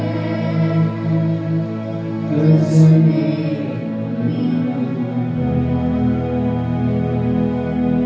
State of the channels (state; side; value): identical; both; correlation 1.00